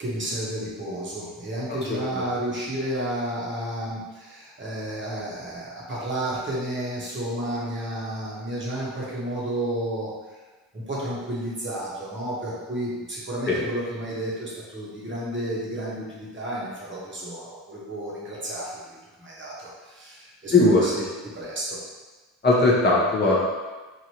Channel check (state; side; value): normal; both; correlation 0.31